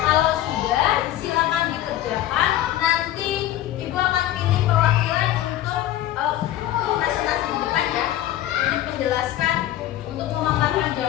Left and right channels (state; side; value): quieter; right; 13.2 dB